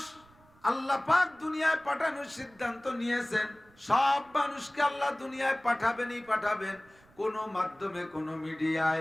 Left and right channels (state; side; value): noise; right; rumble, 29 dB below the sound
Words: আল্লাহ পাক দুনিয়ায় পাঠানোর সিদ্ধান্ত নিয়েছেন, সব মানুষকে আল্লাহ দুনিয়ায় পাঠাবেনই পাঠাবেন। কোন মাধ্যমে, কোন